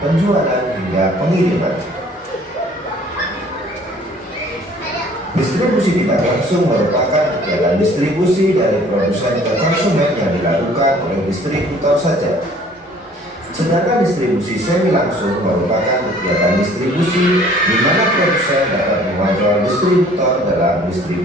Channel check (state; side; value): normal; both; correlation 0.54